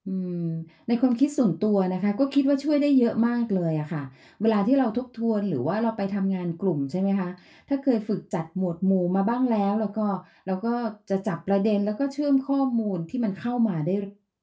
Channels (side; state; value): both; identical; correlation 1.00